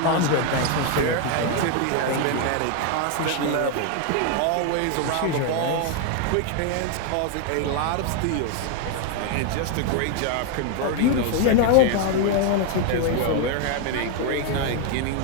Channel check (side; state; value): both; different; correlation 0.01